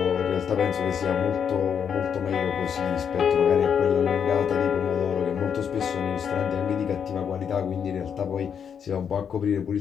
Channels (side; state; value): right; quieter; 7.6 dB